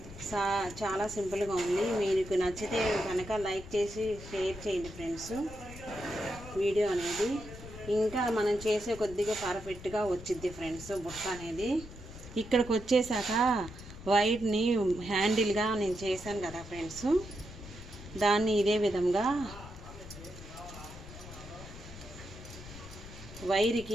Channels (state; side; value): noise; left; rumble, 14 dB below the sound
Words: చాలా సింపుల్గా ఉంది. మీకు నచ్చితే కనుక లైక్ చేసి షేర్ చేయండి ఫ్రెండ్స్ వీడియో అనేది. ఇంకా మనం చేసే కొద్దిగా పర్ఫెక్ట్గా వచ్చిద్ది ఫ్రెండ్స్ బుట్ట అనేది. ఇక్కడికి వచ్చేసాక వైర్ని హ్యాండిల్గా నేను చేశాను కదా ఫ్రెండ్స్, దాన్ని ఇదే విధంగా